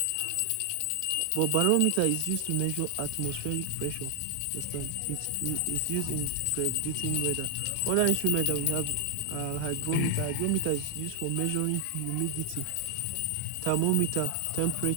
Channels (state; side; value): different; both; correlation 0.00